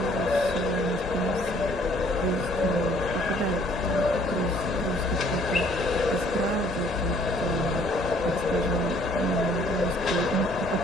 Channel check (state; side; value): normal; both; correlation 0.60